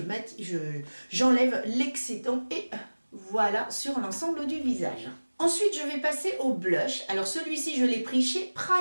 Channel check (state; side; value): inverted; both; correlation -1.00